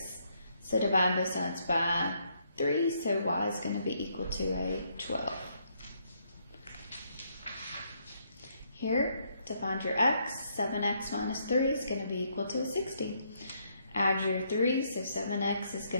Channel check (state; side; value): inverted; both; correlation -0.73